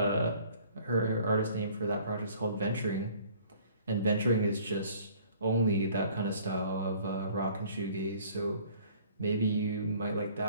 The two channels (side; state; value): both; inverted; correlation -0.54